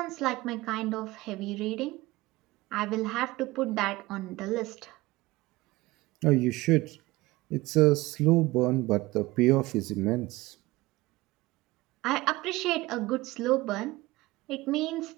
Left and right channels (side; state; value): left; quieter; 20.1 dB